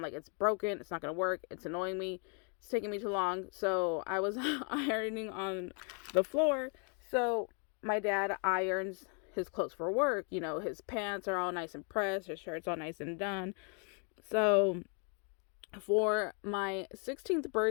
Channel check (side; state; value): right; quieter; 39.4 dB